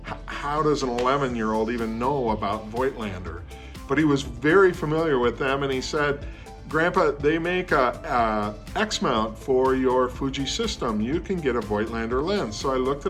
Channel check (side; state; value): both; identical; correlation 1.00